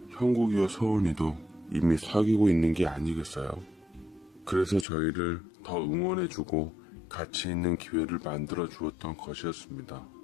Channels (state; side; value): drops out; right; at 4.9 s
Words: 형국이와 서은이도 이미 사귀고 있는 게 아니겠어요. 그래서 저희를 더 응원해주고 같이 있는 기회를 만들어 주었던 것이었습니다.